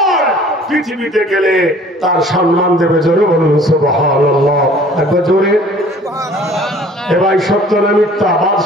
পৃথিবীতে গেলে তার সম্মান দেবে। জোরে বলুন সুবহানাল্লাহ, একবার জোরে। এবার সত্য না মিথ্যা?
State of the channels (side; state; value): both; normal; correlation 0.52